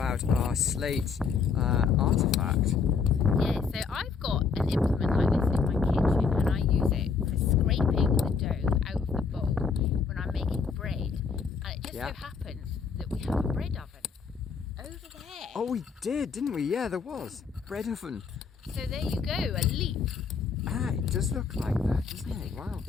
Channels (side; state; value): right; quieter; 5.5 dB